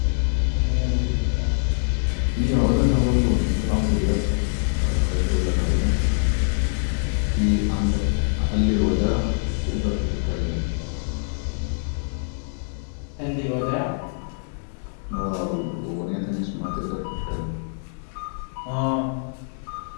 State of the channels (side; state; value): right; silent; 62 dB below the other